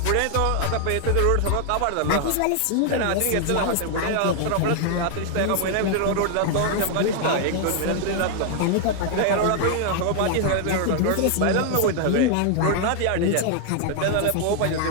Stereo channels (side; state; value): both; different; correlation 0.00